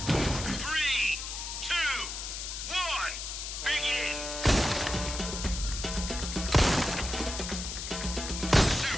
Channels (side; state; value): left; noise; hiss, 6 dB below the sound